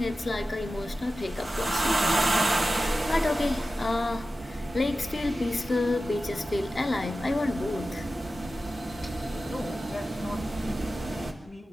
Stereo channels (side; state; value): both; normal; correlation 0.94